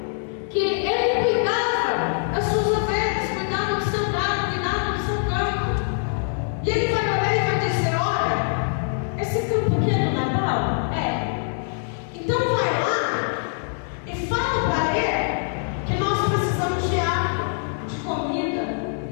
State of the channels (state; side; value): silent; right; digital silence